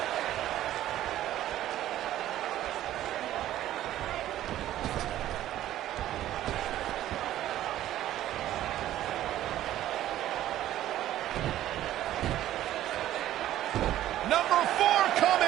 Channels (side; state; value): left; quieter; 13.2 dB